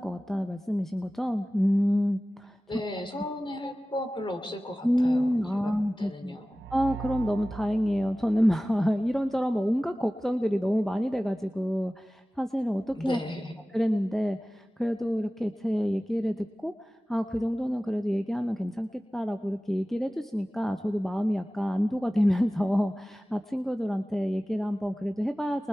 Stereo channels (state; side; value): normal; both; correlation 0.97